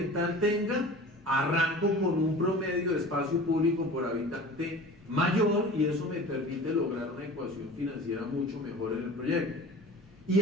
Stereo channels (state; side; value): normal; both; correlation 0.39